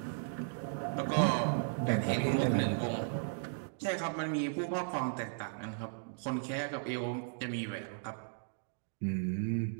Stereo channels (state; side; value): silent; left; digital silence